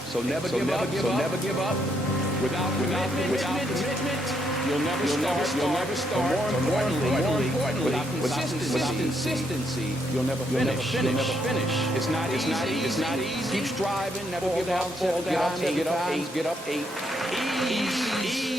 So never give up. Without commitment, you'll never start. But more importantly, without consistency, you'll never finish. It's not easy. Keep striving, never give up, fall down, get up. Ease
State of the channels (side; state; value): both; normal; correlation 0.75